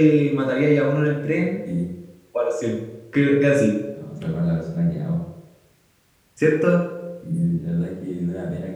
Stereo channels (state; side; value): identical; both; correlation 1.00